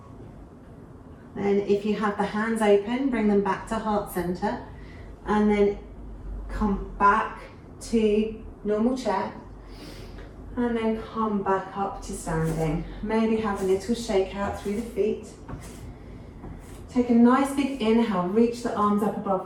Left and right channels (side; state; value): both; identical; correlation 1.00